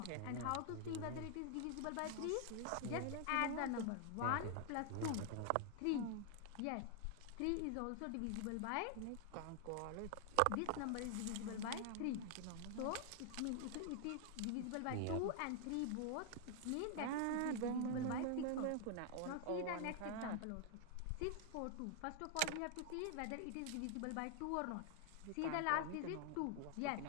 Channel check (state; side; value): different; both; correlation 0.00